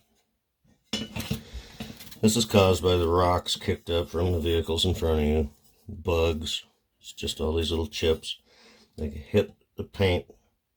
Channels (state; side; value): identical; both; correlation 1.00